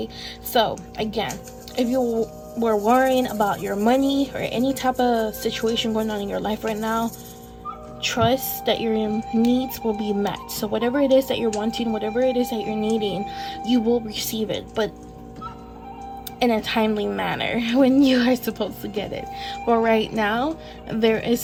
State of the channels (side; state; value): both; identical; correlation 1.00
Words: So again, if you were worrying about your money or any type of situation going on in your life right now, trust that your needs will be met. So whatever it is that you're wanting, whatever it is that you're needing, you will receive it, but in a timely manner, when you are supposed to get it. But right now, there